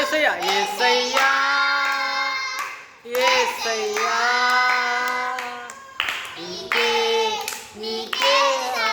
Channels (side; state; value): both; identical; correlation 1.00